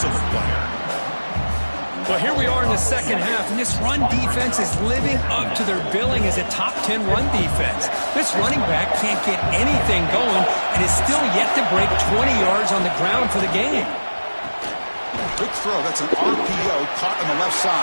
of a player. Well, here we are in the second half, and this run defense is living up to their billing as a top 10 run defense. This running back can't get anything going and is still yet to break 20 yards on the ground for the game. Quick throw. That's an RPO caught on the left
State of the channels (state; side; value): inverted; both; correlation -1.00